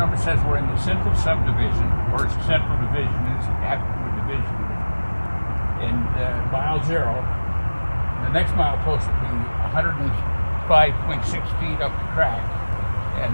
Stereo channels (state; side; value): inverted; both; correlation -1.00